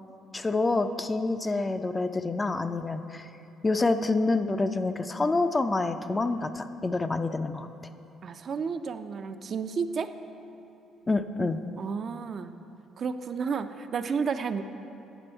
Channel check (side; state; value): both; normal; correlation 0.87